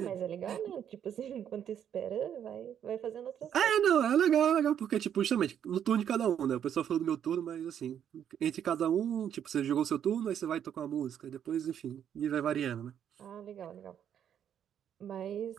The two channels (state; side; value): quieter; left; 9.3 dB